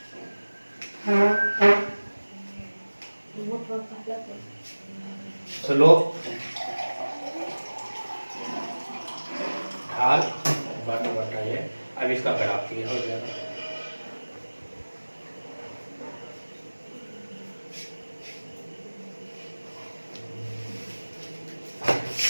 स्लोप ढाल बटा ये, अब इसका ग्राफ ये हो जाएगा।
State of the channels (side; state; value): both; inverted; correlation -1.00